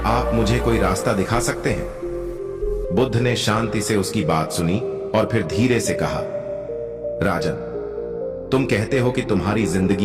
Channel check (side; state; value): both; identical; correlation 1.00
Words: आप मुझे कोई रास्ता दिखा सकते हैं? बुद्ध ने शांति से उसकी बात सुनी और फिर धीरे से कहा, राजन, तुम कहते हो कि तुम्हारी